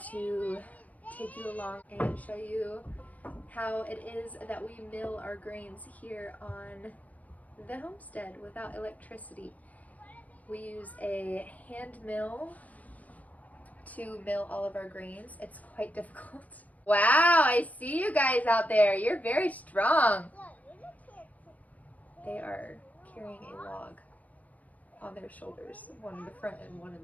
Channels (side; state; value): right; late; 0.075 ms